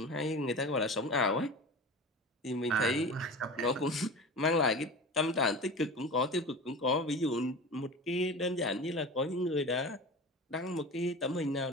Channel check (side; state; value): both; normal; correlation 0.33